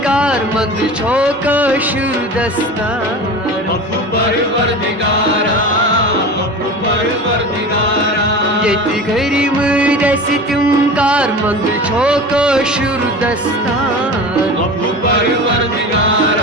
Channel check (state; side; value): normal; both; correlation 0.33